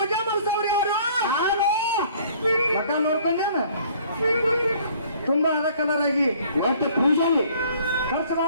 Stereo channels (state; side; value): inverted; both; correlation -0.56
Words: ಮಾಡಿಸೋರು ಯಾರು? ಮಠ ನೋಡ್ಕೊಂಡೇನ ತುಂಬಾ ಅದ ಕಲರ್ ಆಗಿ ಇವತ್ತು ಪೂಜೆಯಲ್ಲಿ ಖರ್ಚು